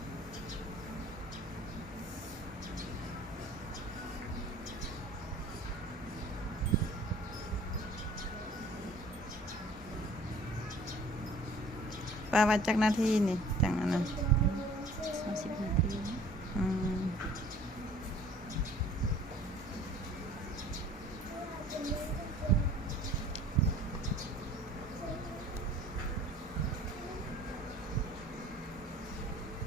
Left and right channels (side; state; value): both; normal; correlation 0.50